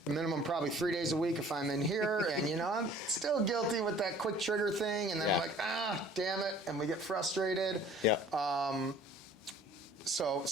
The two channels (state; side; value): normal; both; correlation 0.52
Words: minimum probably 3 days a week if I'm in here, and I'm still guilty with that quick trigger thing, and then I'm like, damn it, and we get frustrated. So